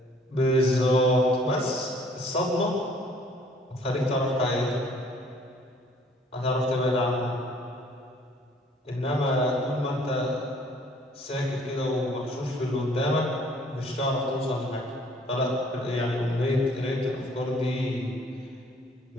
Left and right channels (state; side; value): normal; both; correlation 0.58